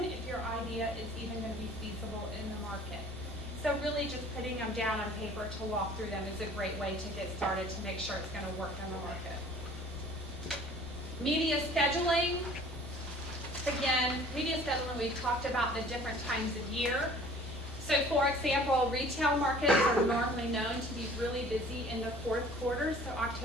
if your idea is even going to be feasible in the market. So really just putting them down on paper to walk through them is a great way to get started to make sure it's going to work in the market. Media scheduling. Again, media scheduling, we've talked about the different times of year. So for example, retail markets are normally known to be really busy in the fourth quarter, so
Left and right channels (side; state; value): both; normal; correlation 0.50